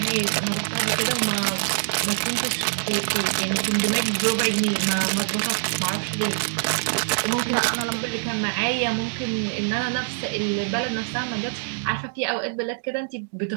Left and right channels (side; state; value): left; silent; digital silence